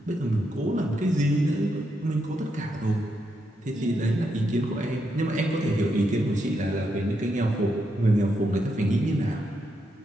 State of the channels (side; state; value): both; normal; correlation 0.81